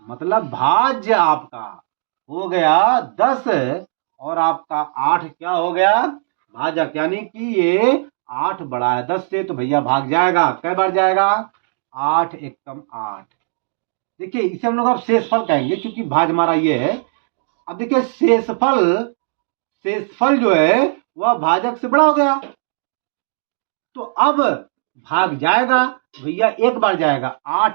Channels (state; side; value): silent; left; digital silence